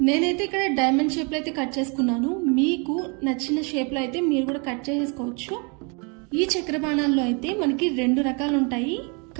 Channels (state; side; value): quieter; left; 34.0 dB